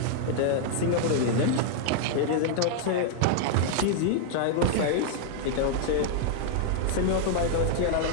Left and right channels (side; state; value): both; different; correlation -0.01